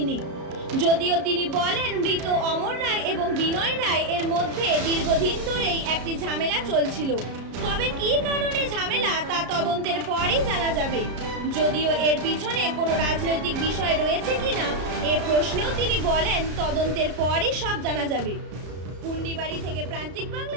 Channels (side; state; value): left; late; 33 ms